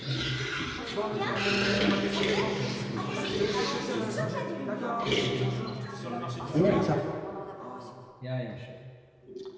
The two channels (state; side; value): identical; both; correlation 1.00